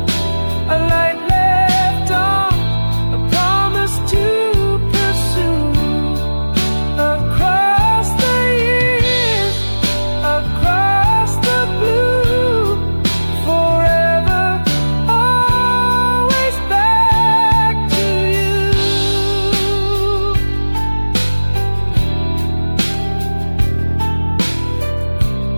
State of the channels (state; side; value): inverted; both; correlation -1.00